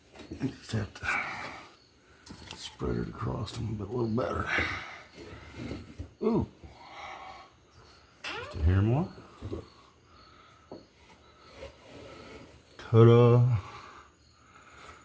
I just have to spread it across them a little better. Ooh. Just a hair more. Ta-da.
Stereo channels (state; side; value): identical; both; correlation 1.00